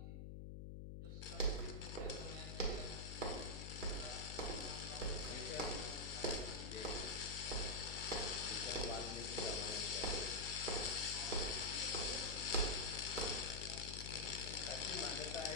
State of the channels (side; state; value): left; noise; hum, 7 dB below the sound